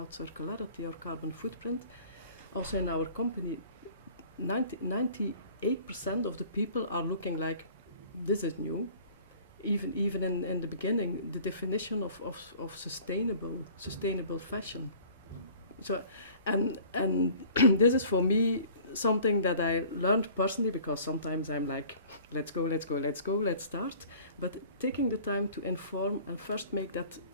circularity or carbon footprint, also in our company, 98% of the people are looking like, this is new. Even in the beginning, the definition of sustainable fashion. So, and this is for me something that I learned personally, because sometimes I'm like, let's go, let's start. But taking the time to inform and first make that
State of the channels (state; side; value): inverted; both; correlation -0.49